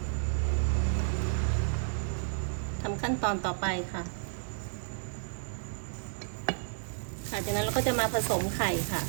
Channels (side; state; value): left; silent; digital silence